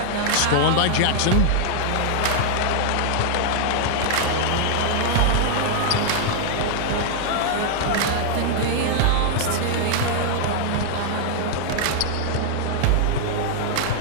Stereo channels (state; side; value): different; both; correlation -0.01